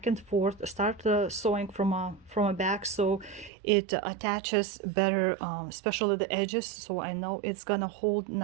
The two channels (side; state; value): left; drops out; at 3.5 s